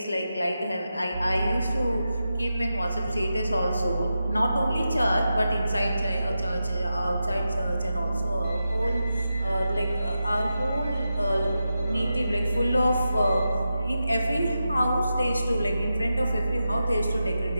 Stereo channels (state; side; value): inverted; both; correlation -0.89